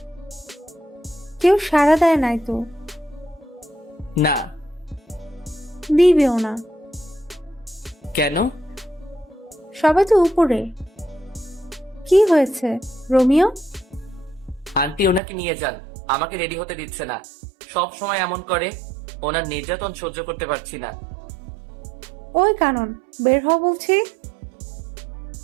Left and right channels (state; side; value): drops out; left; at 15.2 s